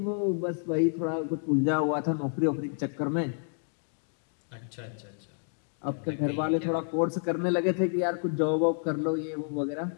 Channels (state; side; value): silent; right; 58 dB below the other